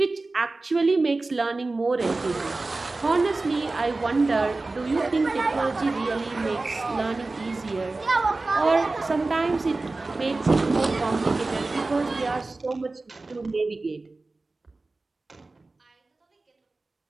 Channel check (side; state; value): left; quieter; 3.4 dB